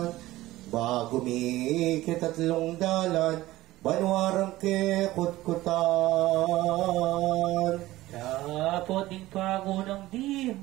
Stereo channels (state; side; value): quieter; left; 16.9 dB